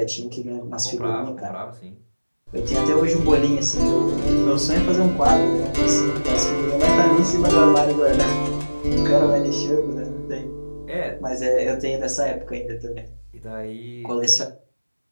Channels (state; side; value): inverted; both; correlation -1.00